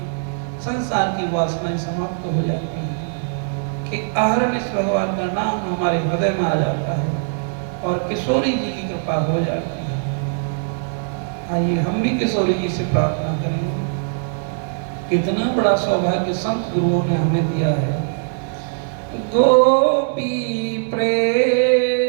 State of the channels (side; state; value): left; silent; digital silence